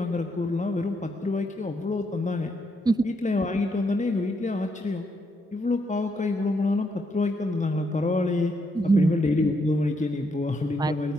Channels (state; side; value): normal; both; correlation 0.77